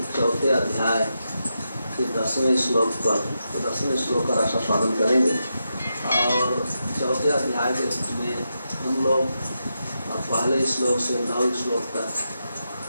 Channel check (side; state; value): both; inverted; correlation -0.86